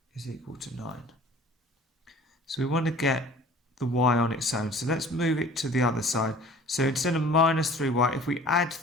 is equal to 9. So we want to get the y on its own. So let's move it to the other side. So instead of minus 3y, if we add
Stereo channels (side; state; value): both; normal; correlation 0.47